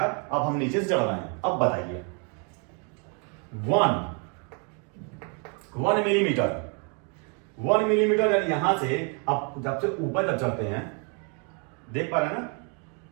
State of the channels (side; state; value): left; quieter; 36.9 dB